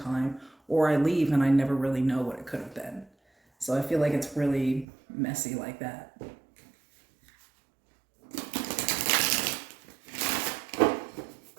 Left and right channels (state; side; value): drops out; left; at 4.9 s